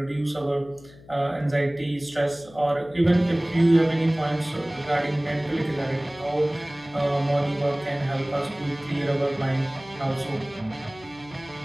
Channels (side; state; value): left; noise; hum, 22 dB below the sound